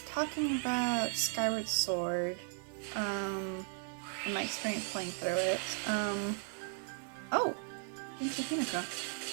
talking about Skyward Sword, and my experience playing through it. Oh! Kinshi Hinoka.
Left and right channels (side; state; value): left; silent; 54 dB below the other